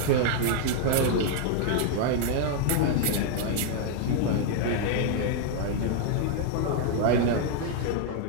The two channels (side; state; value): both; different; correlation -0.01